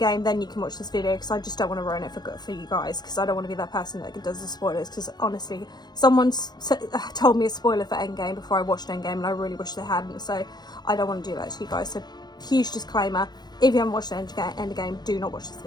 then you can watch this video, because I just don't want to ruin it for you guys, because I don't want to be that person that does the spoilers. Because honestly, someone told me a spoiler for Endgame before I watched Endgame, and I really wish they hadn't. So I don't want to do that to you guys. So huge disclaimer: if you haven't watched Endgame, do not watch this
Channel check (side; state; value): right; late; 0.20 ms